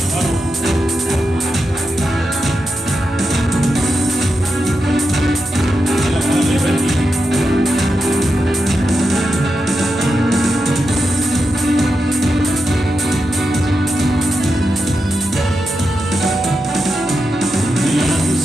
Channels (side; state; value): both; normal; correlation 0.88